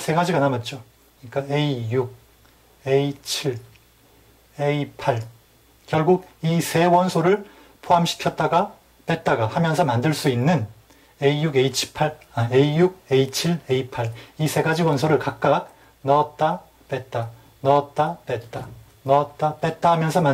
남았죠. 그러니까 A6, A7, A8 결국 이 세 원소를 포함시켰다가 뺐다가 하면서 만들 수 있는 A6, A7, A8 이 3가지 원소를 각각 넣었다 뺐다 넣었다 뺐다 넣었다 뺐다 하면서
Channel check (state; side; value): identical; both; correlation 1.00